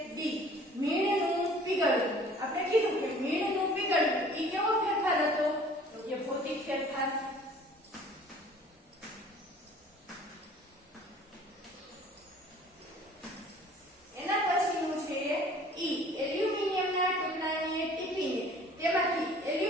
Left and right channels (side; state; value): both; normal; correlation 0.51